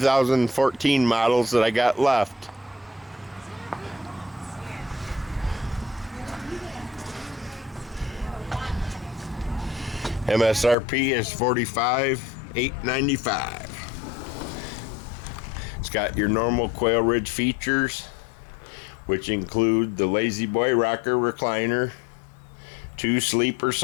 models that I got left. MSRP is $45,895. It's got your normal Quailridge features, which include the Lazy Boy rocker recliner, 2 sleeper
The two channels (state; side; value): drops out; right; at 10.8 s